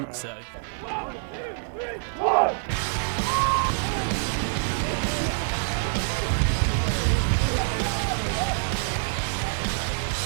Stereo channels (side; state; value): left; silent; digital silence